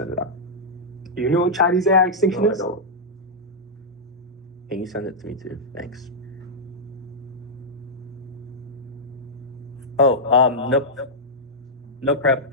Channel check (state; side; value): normal; both; correlation -0.10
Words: it out. Do you know what Chinese AI extinction No, I is? don't. Can you send it to me too? Thanks. Oh, nope. No prep.